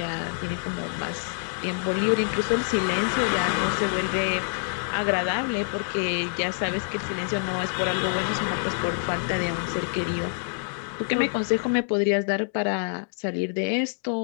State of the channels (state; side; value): silent; right; digital silence